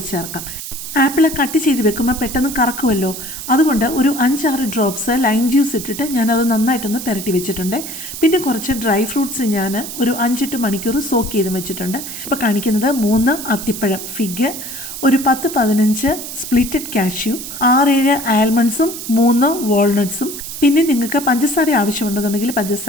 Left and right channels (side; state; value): right; noise; hiss, 9 dB below the sound